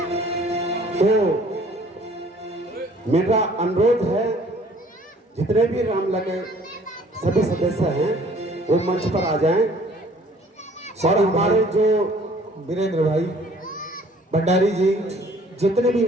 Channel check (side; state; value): both; normal; correlation 0.56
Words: तो मेरा अनुरोध है जितने भी रामलीला के सभी सदस्य हैं वो मंच पर आ जाएं, और हमारे जो वीरेंद्र भाई भंडारी जी, जितने भी